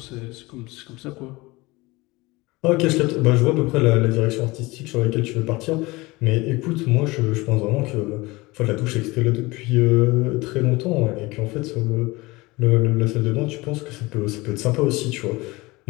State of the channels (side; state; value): right; quieter; 22.3 dB